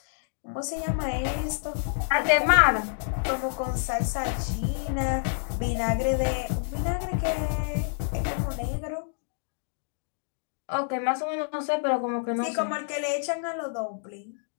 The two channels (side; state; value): right; silent; digital silence